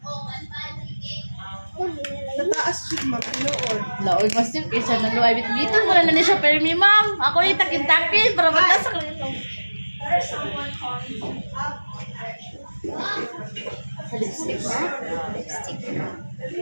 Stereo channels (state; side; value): inverted; both; correlation -1.00